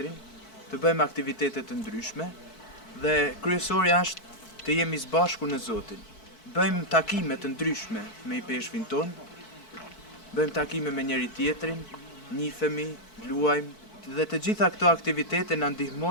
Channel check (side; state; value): right; late; 4.6 ms